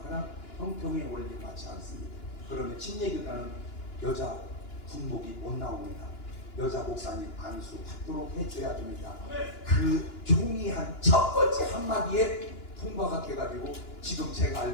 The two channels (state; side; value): late; right; 2.9 ms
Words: 하나 형평의 원리에 맞지 않습니다. 그러면 침례교단은 여자 군목이 못 나옵니다. 여자 목사님 안수받도록 해줘야 됩니다. 그 총의한 첫 번째 한마디에 통과가 돼가지고 지금 제가